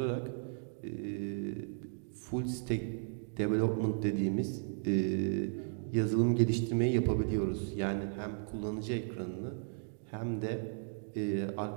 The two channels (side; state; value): left; silent; digital silence